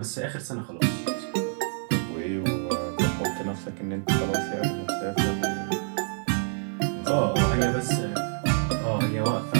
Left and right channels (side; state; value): left; silent; 60 dB below the other